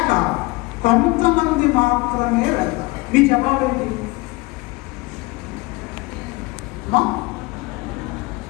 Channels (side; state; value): right; quieter; 23.8 dB